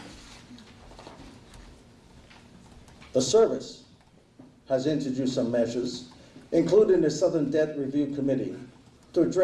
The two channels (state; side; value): identical; both; correlation 1.00